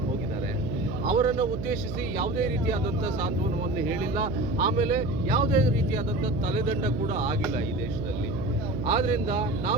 ಹೋಗಿದ್ದಾರೆ. ಅವರನ್ನು ಉದ್ದೇಶಿಸಿ ಯಾವುದೇ ರೀತಿಯಾದಂಥ ಸಾಂತ್ವನವನ್ನು ಹೇಳಿಲ್ಲ. ಆಮೇಲೆ ಯಾವುದೇ ರೀತಿಯಾದಂಥ ತಲೆದಂಡ ಕೂಡ ಆಗಿಲ್ಲ ಈ ದೇಶದಲ್ಲಿ. ಆದ್ದರಿಂದ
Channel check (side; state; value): right; noise; hum, 6 dB below the sound